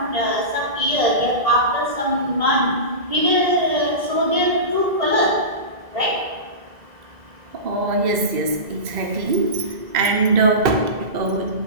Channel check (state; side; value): late; left; 2.0 ms